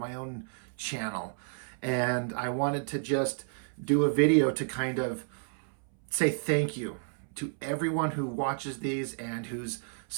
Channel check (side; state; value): left; silent; 57 dB below the other